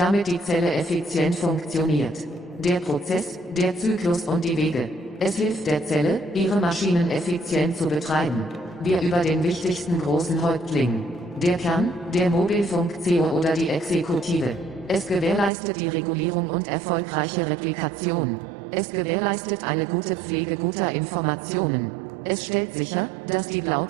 die Zelle effizient funktioniert. Der Prozess, der Zyklus und die Wege. Es hilft der Zelle, ihre Maschinen effizient zu betreiben. Wir über den wichtigsten großen Häuptling. Der Kern, der Mobilfunk-CO oder die Exekutive. Es gewährleistet die Regulierung und erfolgreiche Replikation. Es gewährleistet eine gute Pflege guter Informationen. Es stellt sicher, dass die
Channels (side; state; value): left; drops out; at 15.5 s